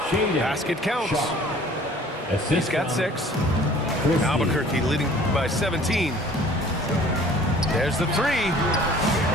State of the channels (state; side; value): normal; both; correlation 0.51